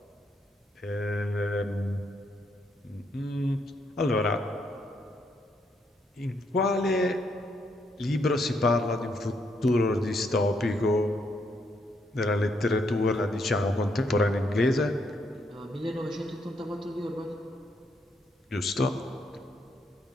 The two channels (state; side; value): normal; both; correlation 0.75